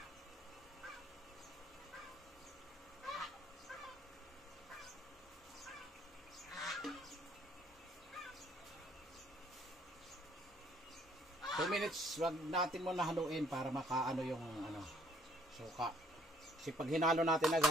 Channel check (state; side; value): normal; both; correlation 0.63